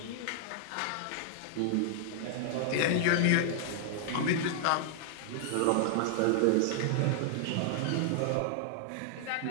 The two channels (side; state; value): both; different; correlation 0.00